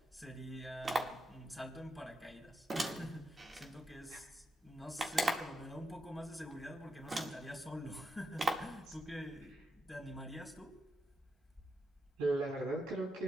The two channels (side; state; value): both; normal; correlation 0.85